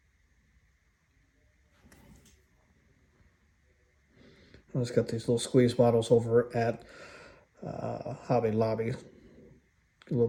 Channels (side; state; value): both; identical; correlation 1.00